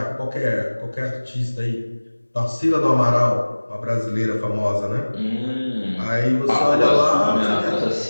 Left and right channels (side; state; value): both; inverted; correlation -1.00